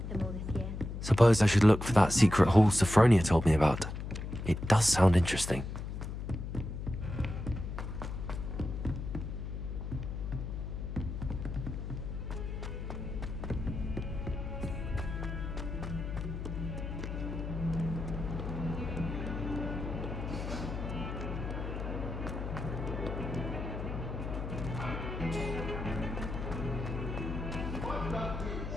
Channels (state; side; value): noise; left; hum, 5 dB below the sound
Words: them all this year. Suppose I should look for that secret hall Sophronia told me about. It does sound interesting.